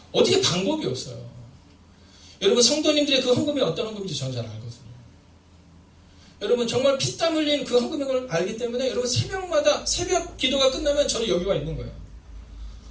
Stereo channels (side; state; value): both; identical; correlation 1.00